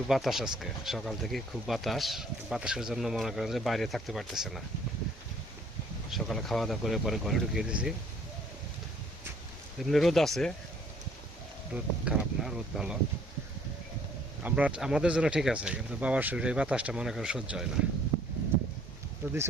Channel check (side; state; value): both; normal; correlation 0.60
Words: বাতাস, আজকে সকাল থেকে খুব বাতাসের জন্য মনে করেন যে বাইরে থাকতে পারতেছে না। সকালে খাওয়া দাওয়া করে পরে ঘরে ঢুকিয়ে দিয়েছি। এমনি রোদ আছে, রোদ খারাপ না, রোদ ভালো। আমাদের জন্য ঠিক আছে, কিন্তু বাবার শরীরে এই বাতাসটা মনে করেন সহ্য হয় না। তো দিছি